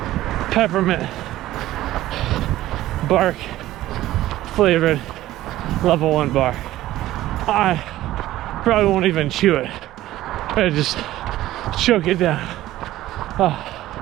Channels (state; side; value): quieter; left; 15.0 dB